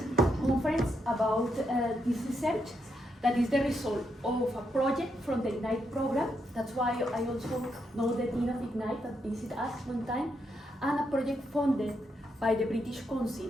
conference about this research that is the result of a project from the IGNITE program. That's why I also know the Dean of IGNITE that visited us one time, and a project funded by the British Council.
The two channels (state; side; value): normal; both; correlation 0.80